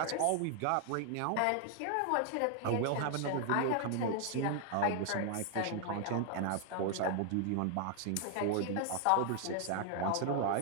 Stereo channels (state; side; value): different; both; correlation 0.00